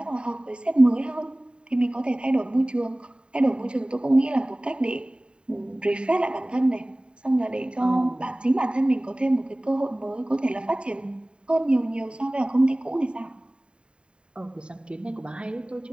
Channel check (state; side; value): late; left; 0.052 ms